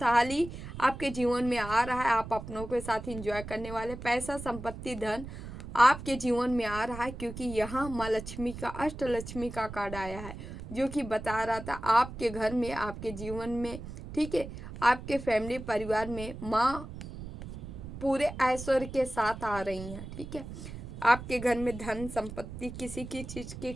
आपके जीवन में आ रहा है, आप अपनों के साथ एंजॉय करने वाले, पैसा, संपत्ति, धन आपके जीवन में आ रहा है, क्योंकि यहाँ माँ लक्ष्मी का, अष्टलक्ष्मी का कार्ड आया है, जो कि बता रहा था आपके घर में, आपके जीवन में, ठीक है, आपके फैमिली परिवार में माँ पूरे ऐश्वर्य के साथ आ रही हैं, ठीक है। आपके घर में धन संपत्ति किसी की चीज़ की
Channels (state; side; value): noise; right; rumble, 11 dB below the sound